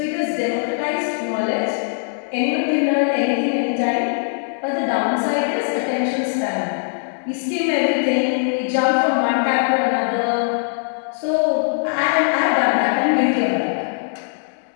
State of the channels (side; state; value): right; silent; digital silence